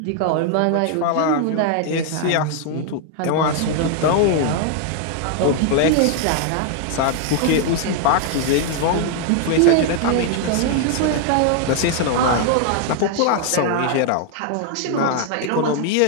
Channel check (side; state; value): both; different; correlation 0.00